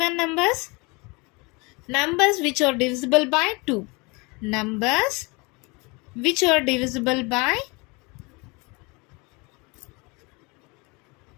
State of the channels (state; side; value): quieter; right; 27.5 dB